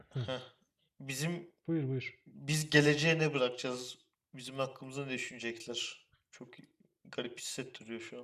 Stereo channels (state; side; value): identical; both; correlation 1.00